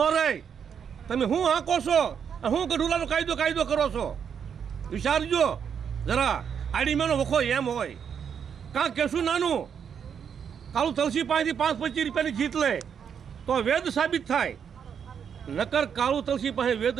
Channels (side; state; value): left; quieter; 7.5 dB